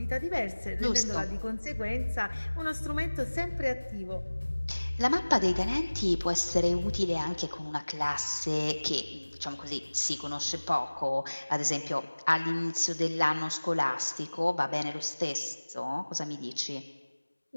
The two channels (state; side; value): inverted; both; correlation -1.00